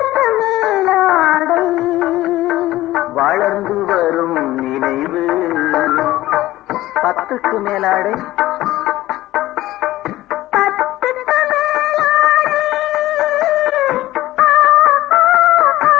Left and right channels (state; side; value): quieter; right; 16.3 dB